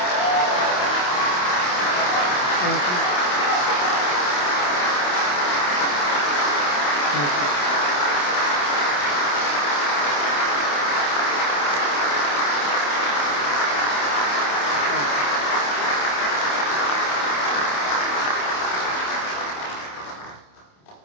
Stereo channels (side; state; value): right; late; 28 ms